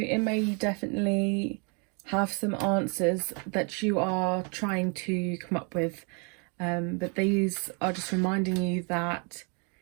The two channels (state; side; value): quieter; left; 35.5 dB